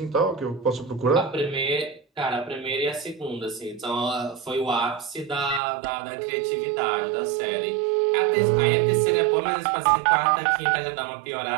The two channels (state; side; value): drops out; left; at 5.6 s